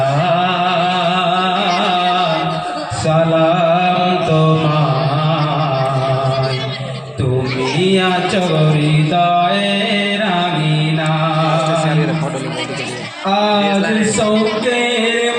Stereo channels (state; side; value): identical; both; correlation 1.00